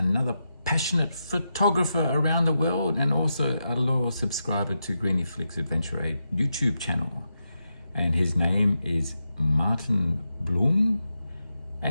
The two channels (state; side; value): inverted; both; correlation -0.87